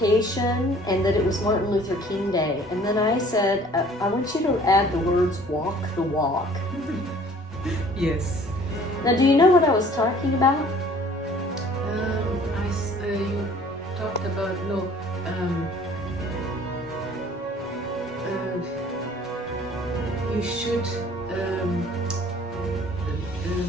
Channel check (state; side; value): normal; both; correlation 0.52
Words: and that it was Martin Luther King Day. And then I said, I want you to add the words "walk the walk." Yes. Now, do you know what I was talking about? You talked about you should I